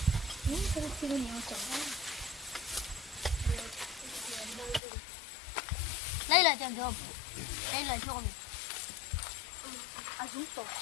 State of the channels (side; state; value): right; drops out; at 4.8 s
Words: đây là trường thường đây là chuồng à chúng tôi